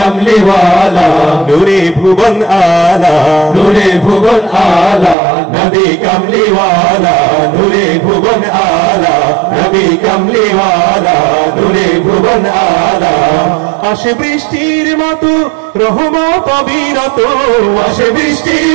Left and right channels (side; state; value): left; drops out; at 5.2 s